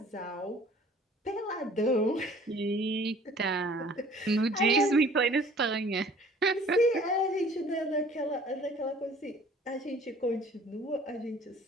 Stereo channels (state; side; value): normal; both; correlation 0.52